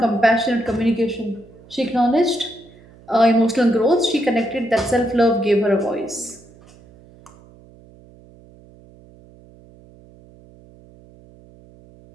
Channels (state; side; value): noise; right; hum, 25 dB below the sound